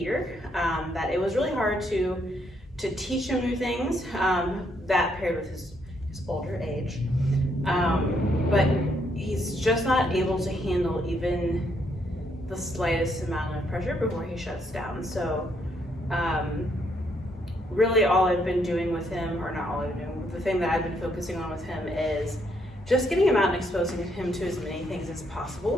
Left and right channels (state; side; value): normal; both; correlation 0.73